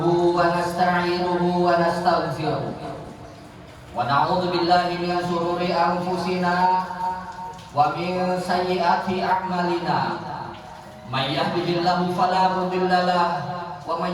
wa nasta'inuhu wa nastaghfiruh wa na'udzu billahi min shururi anfusina wa min sayyiati a'malina may yahdihillahu fala mudilla lahu wa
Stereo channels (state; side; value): identical; both; correlation 1.00